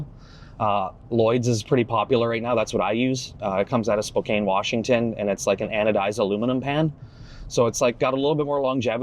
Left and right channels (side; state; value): both; identical; correlation 1.00